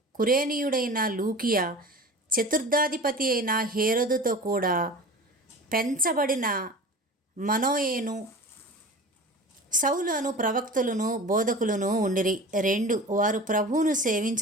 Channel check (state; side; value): normal; both; correlation 0.37